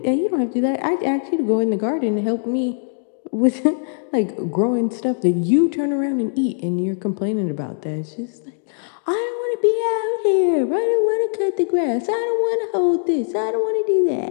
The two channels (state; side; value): silent; right; digital silence